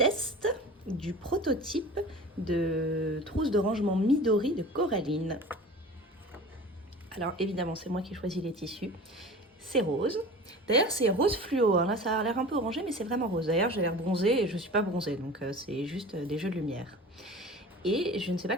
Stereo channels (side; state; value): both; normal; correlation 0.38